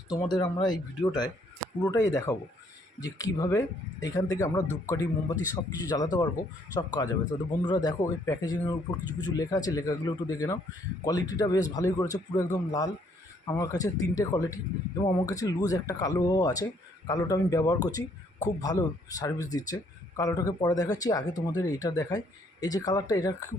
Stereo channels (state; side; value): normal; both; correlation 0.67